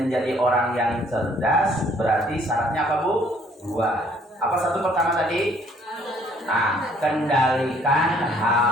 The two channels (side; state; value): both; normal; correlation 0.62